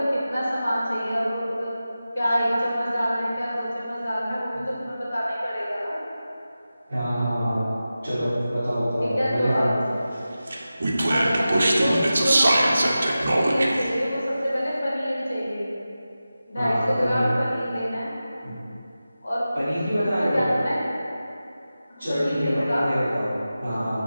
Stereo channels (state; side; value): inverted; both; correlation -0.94